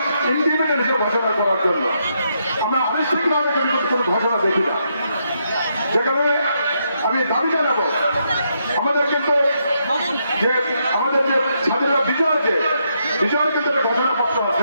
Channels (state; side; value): inverted; both; correlation -0.78